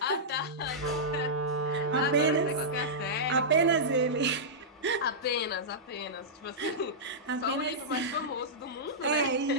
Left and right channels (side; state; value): both; normal; correlation -0.13